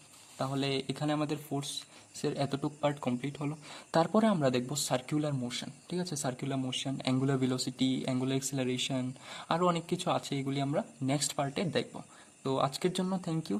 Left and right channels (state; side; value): identical; both; correlation 1.00